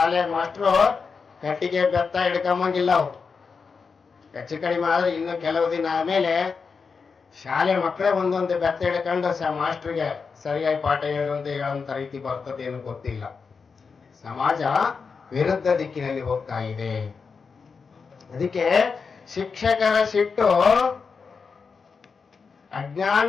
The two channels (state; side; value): quieter; right; 5.3 dB